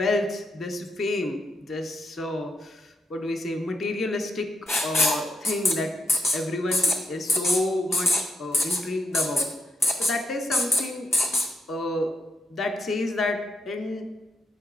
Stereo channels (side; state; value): both; normal; correlation 0.83